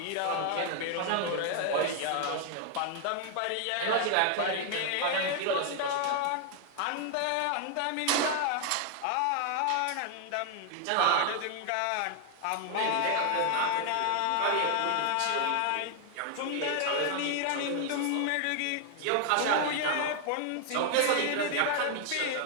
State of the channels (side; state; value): both; different; correlation 0.00